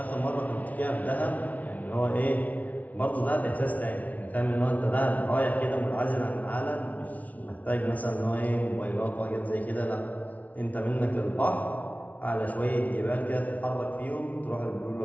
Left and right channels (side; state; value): right; late; 0.071 ms